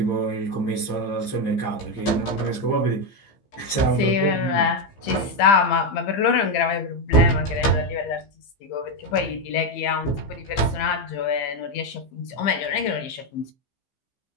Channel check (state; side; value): late; right; 15 ms